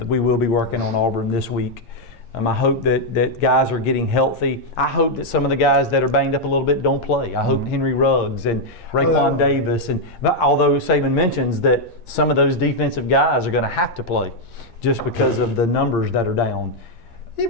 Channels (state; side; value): late; right; 8.7 ms